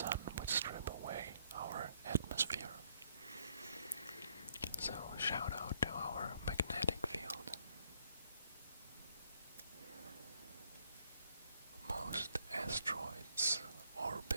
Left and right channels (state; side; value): inverted; both; correlation -0.69